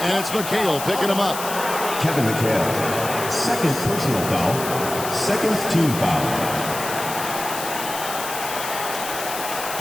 it's McHale picking him up. Kevin McHale. Second personal foul. Second team foul.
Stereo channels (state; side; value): noise; left; hiss, 7 dB below the sound